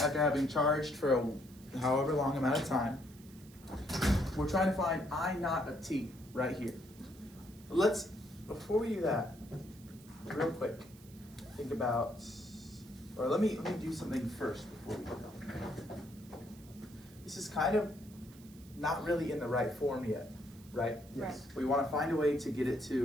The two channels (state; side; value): noise; right; hiss, 23 dB below the sound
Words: having charged for a however long amount of time. We're trying to find I naught of t right here. Let's, before we do that, real quick, think about, or let me do something first before we do that. This is kind of not really in the right form yet, right? Yes. We want to find a way to get it